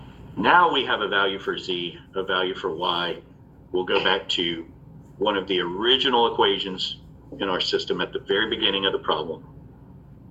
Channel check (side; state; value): both; identical; correlation 1.00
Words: Now we have a value for z, a value for y. We'll go back to one of the original equations in our system at the very beginning of the problem.